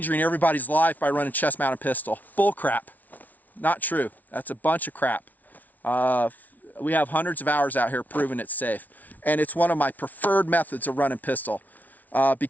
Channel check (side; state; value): right; late; 0.077 ms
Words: everybody's life by running chest mounted pistol, bull crap. Not true. That's a bunch of crap. We have hundreds of hours out here proving it's safe. And it's one of my preferred methods of running pistol